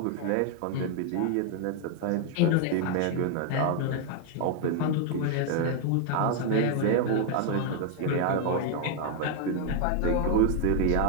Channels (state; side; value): different; both; correlation 0.00